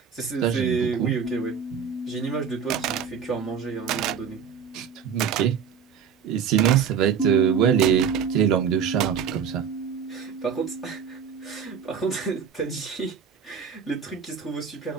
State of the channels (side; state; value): left; quieter; 7.1 dB